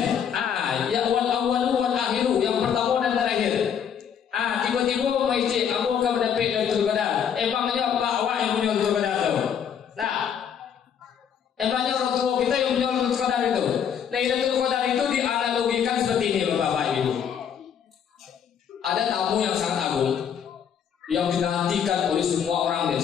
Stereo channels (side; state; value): right; quieter; 8.1 dB